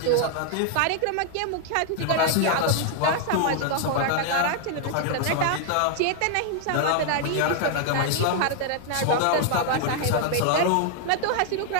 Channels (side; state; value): both; different; correlation 0.00